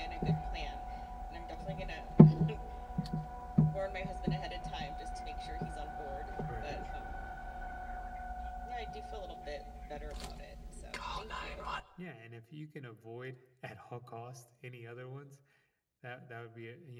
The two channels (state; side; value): identical; both; correlation 1.00